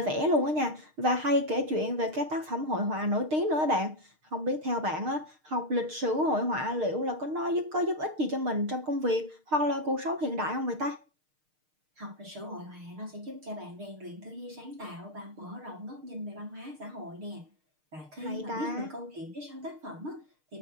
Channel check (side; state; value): left; late; 6.5 ms